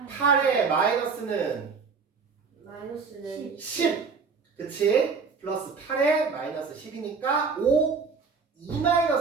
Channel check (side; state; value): left; quieter; 5.2 dB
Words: 8에 마이너스는 마이너스는 10 그치? 플러스 8에 마이너스 10이니까 5 2